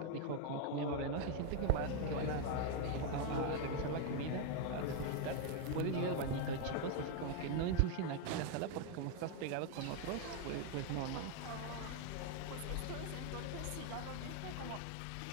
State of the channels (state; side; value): different; both; correlation 0.01